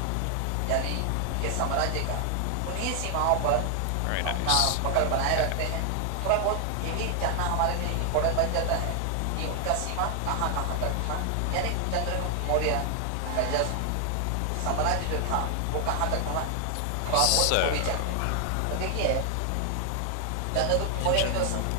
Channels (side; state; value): both; different; correlation 0.00